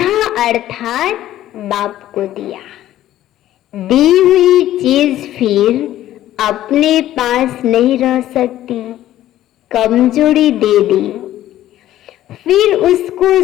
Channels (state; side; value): quieter; right; 13.4 dB